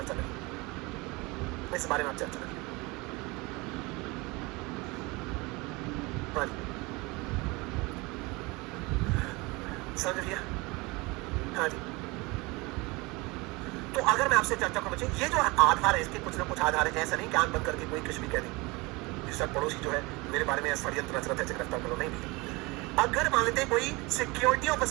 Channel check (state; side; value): quieter; left; 24.6 dB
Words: करेंगे, इस बारे में आप चर्चा करेंगे, हाँ जी, समझ लिया, हाँ जी। तो अगर मैं आपसे चर्चा करूं बच्चे, ये जो आधार है, इसके कुछ ना कुछ आधार है, ऐसा नहीं कि आंख बंद करके कोई कुछ भी कह दे, सर पड़ोसी जो है मेरे बारे में षड्यंत्र रच रहा है, गिरफ्तार करो, नहीं भी। अगर मान लेते कोई सिक्योरिटी ऑफ